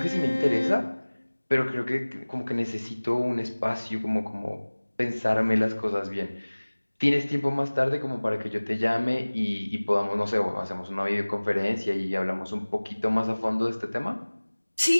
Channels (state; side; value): inverted; both; correlation -1.00